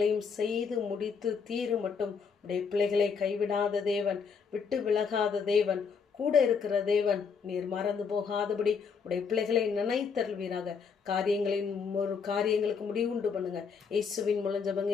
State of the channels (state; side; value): quieter; right; 5.8 dB